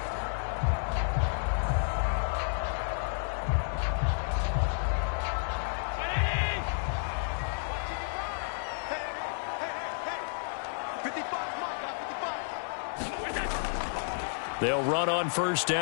They'll run on first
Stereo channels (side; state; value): right; silent; digital silence